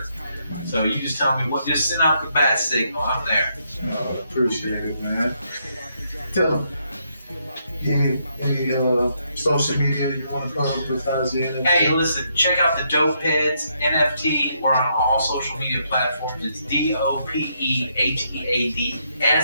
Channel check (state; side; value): inverted; both; correlation -0.76